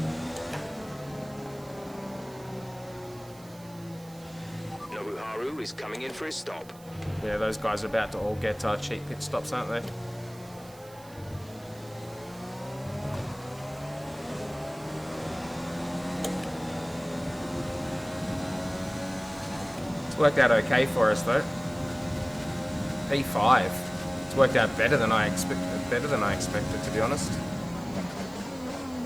Haru is coming in for his stop. Yeah, those guys are about to all get cheap pit stops, aren't they? It's worked out okay for us though. P5. It's worked out better than I expected, to be honest.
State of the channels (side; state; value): right; noise; hiss, 23 dB below the sound